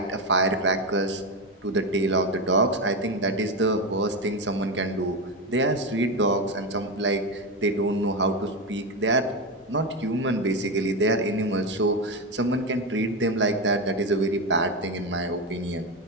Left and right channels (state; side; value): normal; both; correlation 0.14